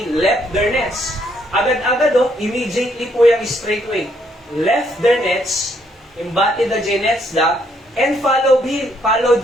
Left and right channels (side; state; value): both; normal; correlation 0.71